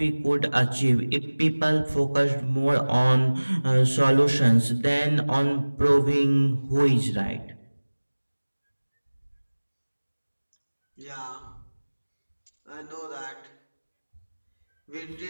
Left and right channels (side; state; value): both; inverted; correlation -1.00